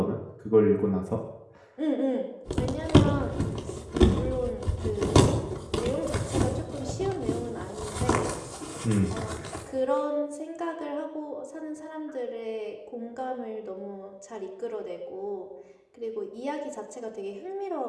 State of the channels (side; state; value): both; identical; correlation 1.00